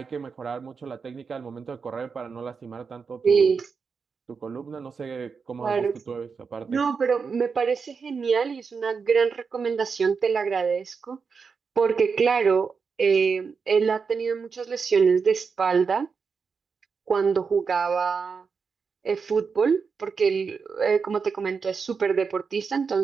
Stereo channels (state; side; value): quieter; left; 5.5 dB